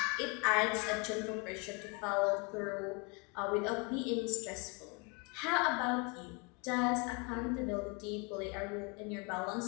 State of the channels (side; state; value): right; quieter; 31.9 dB